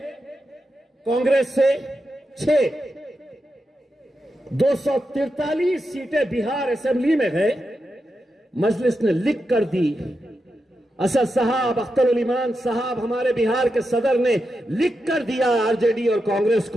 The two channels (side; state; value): both; normal; correlation 0.88